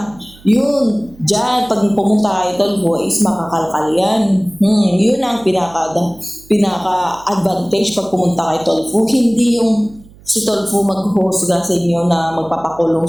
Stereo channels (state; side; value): noise; right; hum, 24 dB below the sound